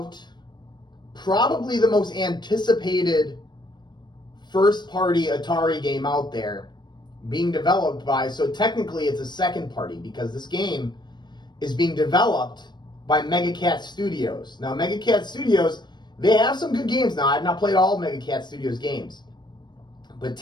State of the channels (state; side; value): late; right; 0.21 ms